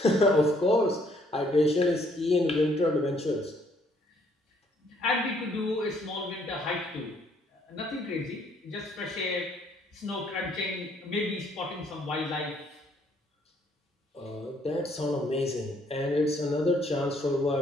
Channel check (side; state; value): both; normal; correlation 0.66